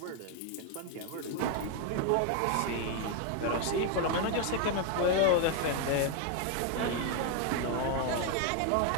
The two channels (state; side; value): different; both; correlation 0.01